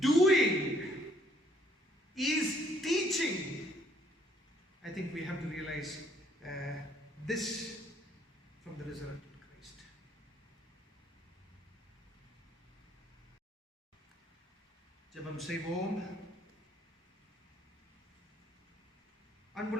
doing, is teaching. I think we have to realize this from the resurrected Christ. ஜெபம் செய்வோம்.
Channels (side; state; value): both; normal; correlation 0.65